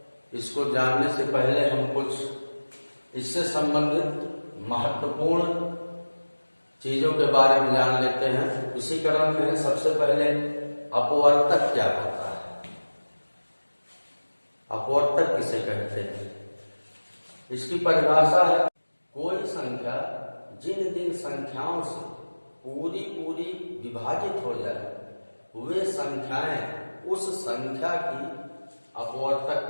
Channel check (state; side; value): inverted; both; correlation -1.00